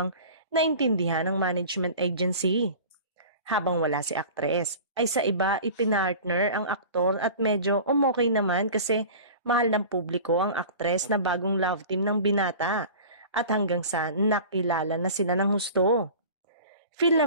naintindihan ng management agency. Habang wala si aktres, ay sa iba ipinartner ang aktor at medyo umokay naman kasi mahal ng publiko ang aktres na bagong love team ng binata at hanggang sa nakilala na sila ng husto. Feel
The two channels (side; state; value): both; inverted; correlation -0.38